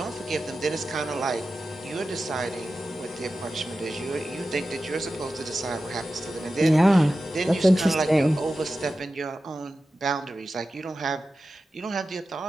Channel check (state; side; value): normal; both; correlation 0.93